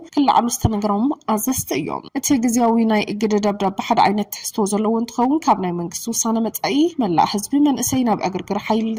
ክላዓሉ ዝተነገሮም አዘዝት እዮም እቲ ግዚያዊ ናይ እግድ ደብዳቤ ሓደ ዓይነት ትሕዝቶ ዘለዎ እንትኸውን ካብ ናይ መንግስቲ ውሳነ መጻኢ መላእ ህዝቢ መንእሰይ ናብ እግርግር ሓይሊ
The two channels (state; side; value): identical; both; correlation 1.00